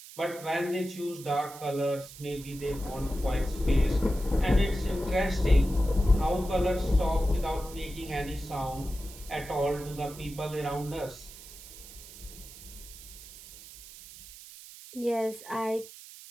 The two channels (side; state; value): right; noise; hiss, 16 dB below the sound